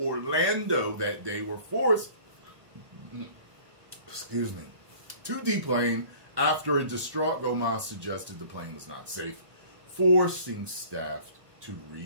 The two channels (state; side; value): late; left; 1.2 ms